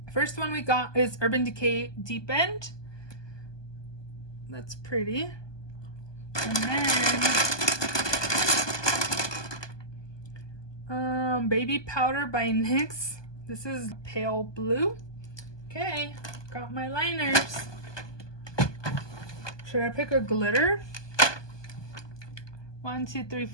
First one we got is Urban Decay Deep End. That's pretty. And then Baby Powder by NYX. This is pale blue. Okay, got my liners. Should I pick a glitter? 1, 2, 3,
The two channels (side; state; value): right; late; 1.2 ms